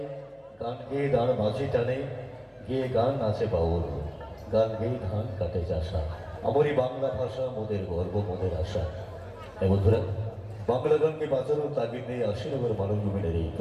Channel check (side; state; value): both; identical; correlation 1.00